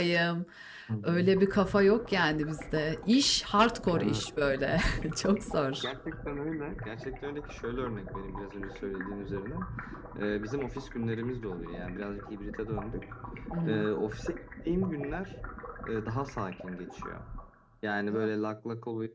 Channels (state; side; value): identical; both; correlation 1.00